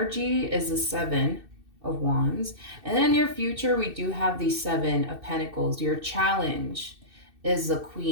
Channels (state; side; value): late; left; 2.6 ms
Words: is the 7 of Wands. And then in your future we do have the 7 of Pentacles. Your challenge is the